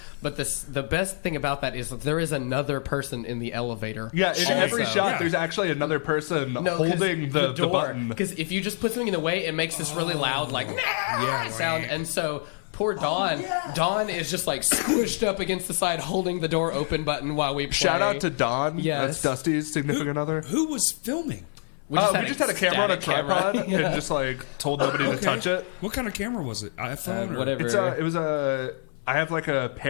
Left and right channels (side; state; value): right; silent; 57 dB below the other